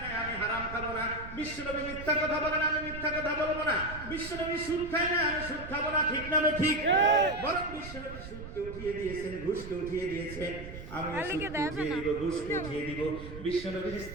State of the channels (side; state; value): right; noise; rumble, 12 dB below the sound